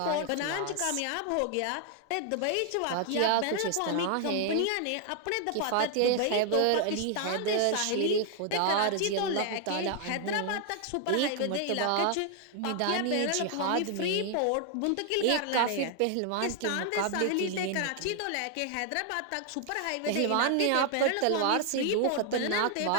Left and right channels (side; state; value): both; different; correlation 0.00